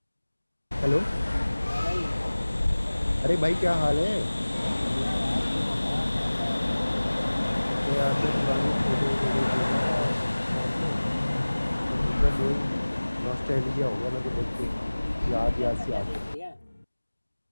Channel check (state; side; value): inverted; both; correlation -1.00